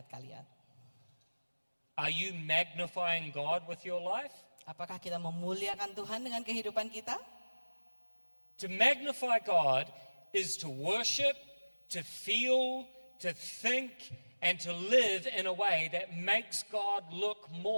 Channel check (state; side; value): inverted; both; correlation -1.00